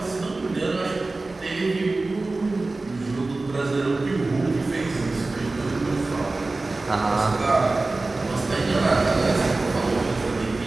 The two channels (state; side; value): quieter; left; 3.3 dB